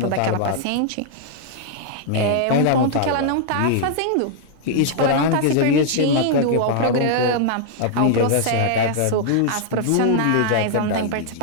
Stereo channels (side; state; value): both; different; correlation -0.01